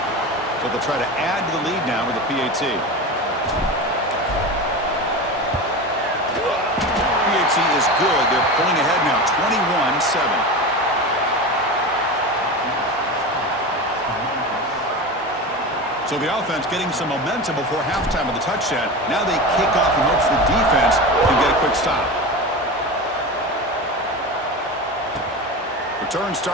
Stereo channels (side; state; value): both; normal; correlation 0.26